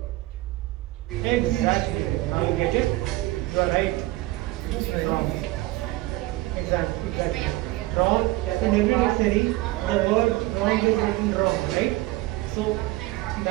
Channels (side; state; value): left; quieter; 19.0 dB